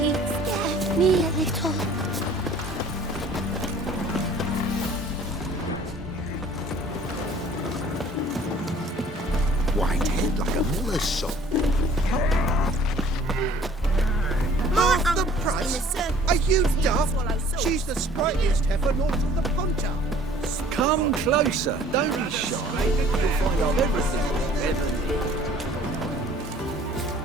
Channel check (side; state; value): both; normal; correlation 0.52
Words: scared me a little. White head like a miller's son. Half the price? Are you daft? She's the sprightliest heifer north of the Ponta. Come closer, don't be shy. You'll find out everything you'll ever